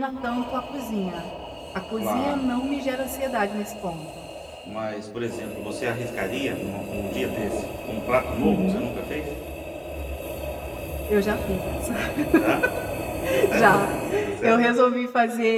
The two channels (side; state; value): both; identical; correlation 1.00